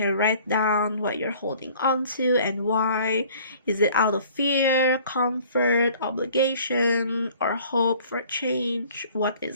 write down what you're holding on to and why. Is it out of fear, comfort, obligation, or hope for change? What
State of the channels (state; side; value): inverted; both; correlation -0.52